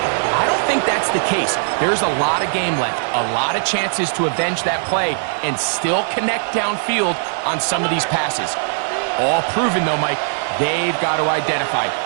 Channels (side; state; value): left; silent; 64 dB below the other